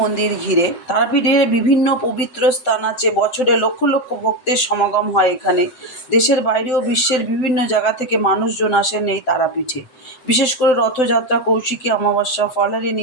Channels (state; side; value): late; right; 7.8 ms